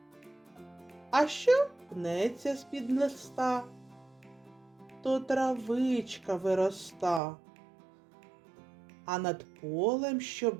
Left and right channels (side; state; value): left; drops out; at 7.2 s